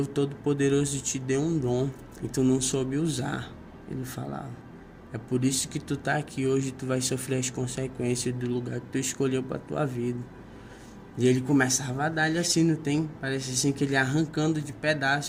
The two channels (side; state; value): both; identical; correlation 1.00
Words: Todo-Poderoso te deu um dom e tu não soube usar. Ele falava: é por isso que tu tá aqui hoje, tu vai sofrer as consequências do lugar que tu escolheu pra tua vida. E ele começava a dar-lhe assim, não tem? Parece assim que ele arrancando de